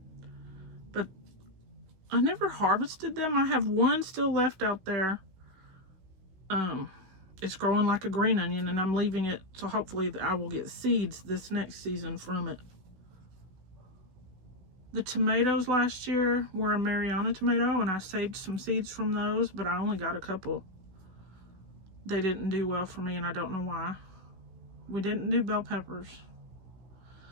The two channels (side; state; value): left; late; 16 ms